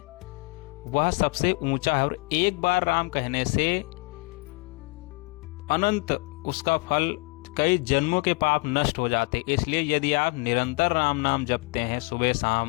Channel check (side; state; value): right; quieter; 28.0 dB